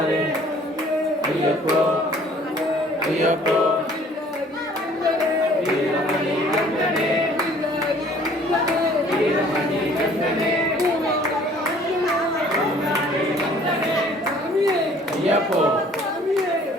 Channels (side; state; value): both; normal; correlation 0.55